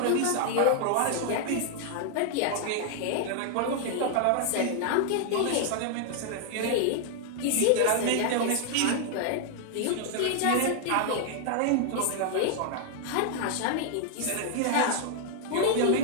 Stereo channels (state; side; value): different; both; correlation 0.00